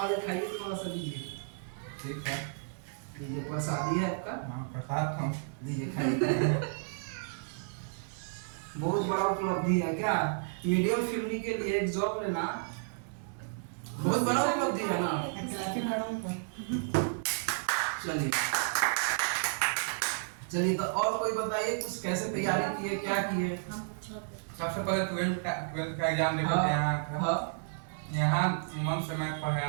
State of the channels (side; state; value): left; silent; digital silence